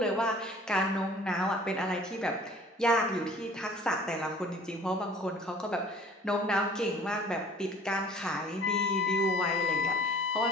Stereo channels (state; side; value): normal; both; correlation 0.50